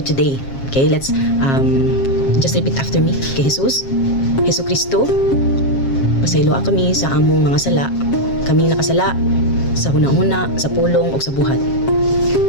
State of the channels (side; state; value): right; late; 7.4 ms